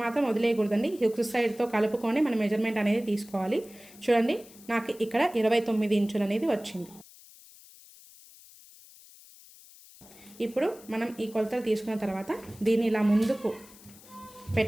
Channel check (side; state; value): left; noise; hiss, 22 dB below the sound